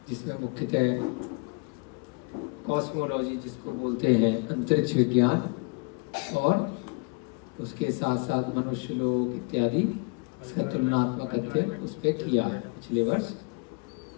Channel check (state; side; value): quieter; right; 32.3 dB